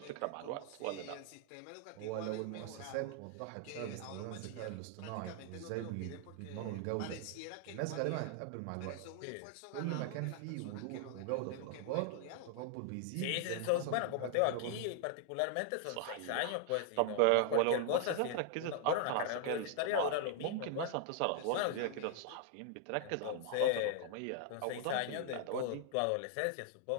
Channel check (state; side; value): different; both; correlation 0.00